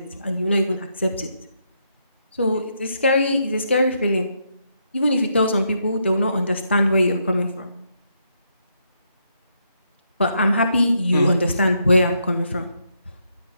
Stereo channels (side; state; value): both; inverted; correlation -0.78